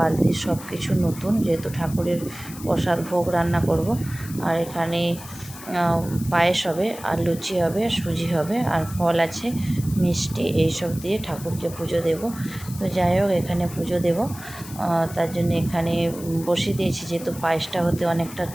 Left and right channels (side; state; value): left; noise; hiss, 15 dB below the sound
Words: সব কিছু নতুন, যেহেতু ঠাকুরের প্রসাদ ভোগ রান্না করব। আর এখানে পায়েস হবে আর লুচি হবে, সুজি হবে আর ফল আছে, মিষ্টি, এইসব দিয়ে ঠাকুরকে পুজো দেব। তো যাই হোক, এখানে পুজো দেব, তার জন্য এখানে বসিয়ে দিয়েছি, যেহেতু পায়েসটা হতে অনেকটা